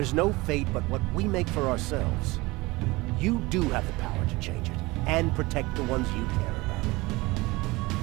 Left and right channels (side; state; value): left; quieter; 22.1 dB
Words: no fate but what we make for ourselves. You do have the power to change it, and protect the ones you care about.